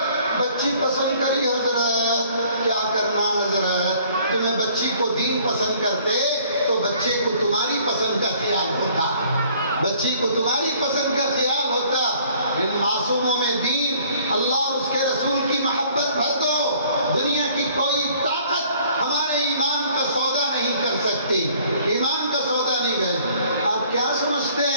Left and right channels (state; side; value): inverted; both; correlation -0.57